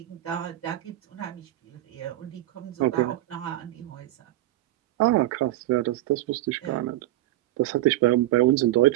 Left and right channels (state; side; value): quieter; left; 15.8 dB